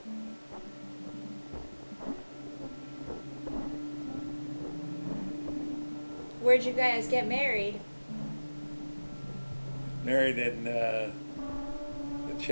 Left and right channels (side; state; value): both; inverted; correlation -1.00